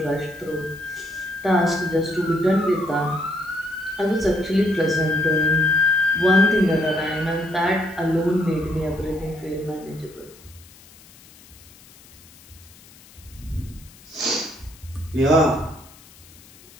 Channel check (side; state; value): left; noise; hiss, 24 dB below the sound